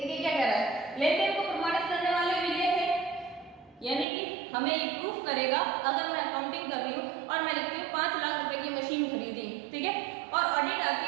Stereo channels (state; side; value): drops out; left; at 4.0 s